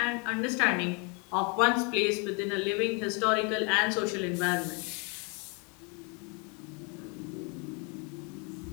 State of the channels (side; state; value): right; quieter; 32.8 dB